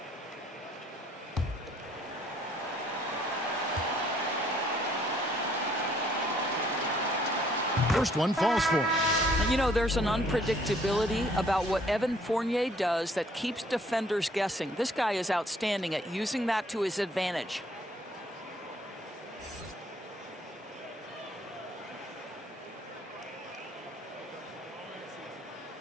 First one falls for him. You know, there's an unpredictability about what Evan Fournier does that keeps defenders guessing. This guy is outstanding at using that to his advantage.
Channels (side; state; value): both; normal; correlation 0.62